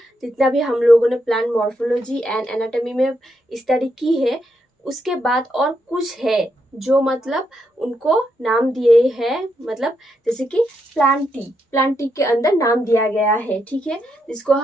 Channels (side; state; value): both; normal; correlation 0.80